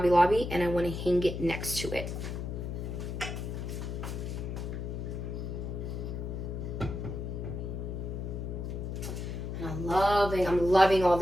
Lobby, and I want to hang it next to it. And I'm loving all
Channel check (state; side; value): noise; left; hum, 4 dB below the sound